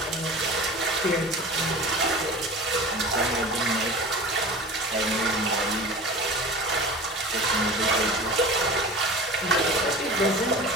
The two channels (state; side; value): normal; both; correlation 0.36